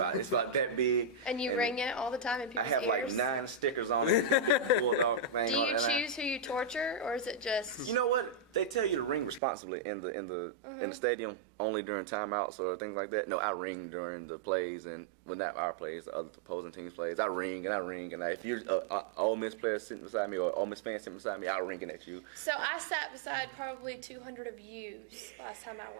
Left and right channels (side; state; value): left; drops out; at 9.4 s